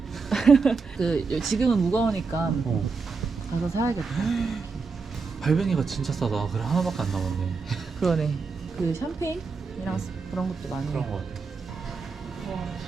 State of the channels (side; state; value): left; quieter; 4.7 dB